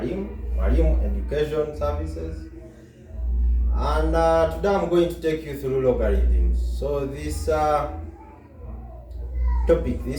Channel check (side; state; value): both; identical; correlation 1.00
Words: Education Services, and today I'm going to take you through logarithms. So this